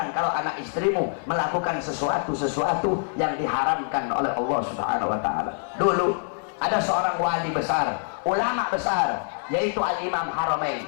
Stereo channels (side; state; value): right; silent; 62 dB below the other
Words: kalau anak istrimu melakukan sesuatu yang diharamkan oleh Allah Subhanahu wa taala. Dulu ada seorang wali besar, ulama besar, yaitu Al-Imam Haramain.